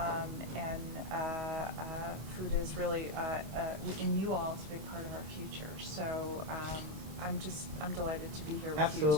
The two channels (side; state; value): left; late; 26 ms